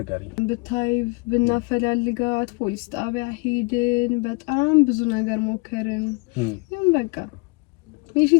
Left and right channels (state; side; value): quieter; right; 28.5 dB